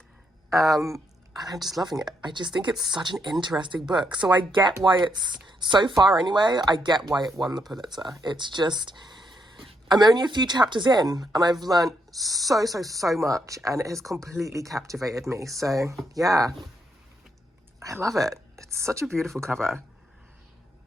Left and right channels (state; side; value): normal; both; correlation 0.77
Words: I'm just loving it. I just think it's such an interesting book. So I get why it's, so far anyway, I get why it won the Pulitzer. It's just, I'm only a few chapters in, and I've learned so much, and it has completely captivated me. So yeah, I love it. It's such a beautiful cover.